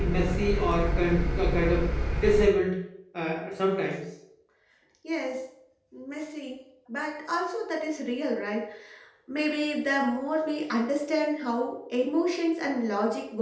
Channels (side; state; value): both; identical; correlation 1.00